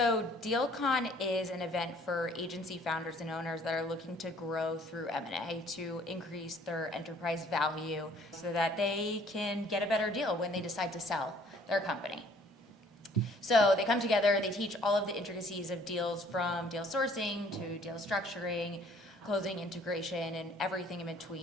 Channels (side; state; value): both; normal; correlation 0.58